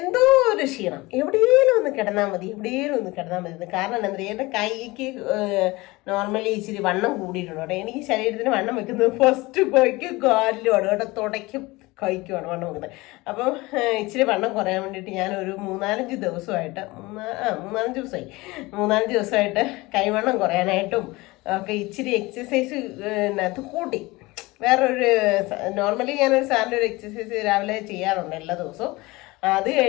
ഒരു ക്ഷീണം, എവിടെയെങ്കിലും ഒന്ന് കിടന്നാൽ മതി, എവിടെയെങ്കിലും ഒന്ന് കിടന്നാൽ മതി. കാരണം എന്താ പറയുക, എൻ്റെ കൈക്ക് നോർമലി ഇച്ചിരി വണ്ണം കൂടിയിട്ടുണ്ട് കേട്ടോ. എനിക്ക് ശരീരത്തിന് വണ്ണം വെക്കുന്നത് ഫസ്റ്റ് കൈക്ക് കാലിലുമാണ് കേട്ടോ, തുടയ്ക്കും കൈക്കുമാണ് വണ്ണം വെക്കുന്നത്. അപ്പം ഇച്ചിരി വണ്ണം കുറയാൻ വേണ്ടിയിട്ട് ഞാനൊരു മൂന്നാലഞ്ച് ദിവസമായിട്ട് കൈവണ്ണം കുറയാനായിട്ടും ഒക്കെ ഇച്ചിരി എക്സസൈസ് അത് കൂട്ടി. വേറൊരു നോർമലി ഞാനൊരു സാറിൻ്റെ ഒരു എക്സസൈസ് രാവിലെ ചെയ്യാറുണ്ട് എല്ലാ ദിവസവും. അത്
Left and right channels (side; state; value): right; quieter; 21.8 dB